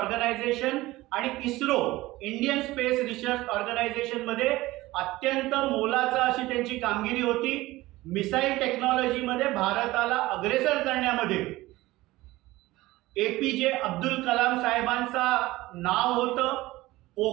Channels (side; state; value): left; quieter; 18.6 dB